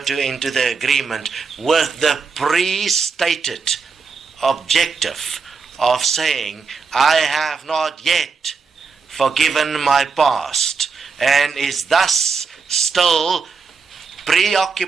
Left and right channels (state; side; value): quieter; left; 5.1 dB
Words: the agreement with the pre-stated objective of saying, I have not yet forgiven my past, and is thus still